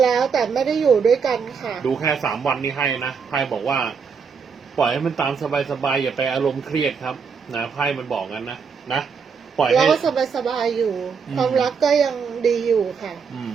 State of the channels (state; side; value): quieter; left; 5.9 dB